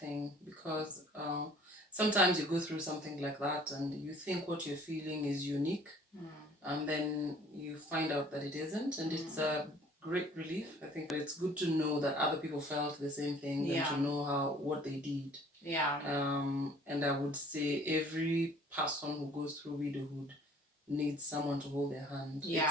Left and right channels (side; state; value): both; normal; correlation 0.53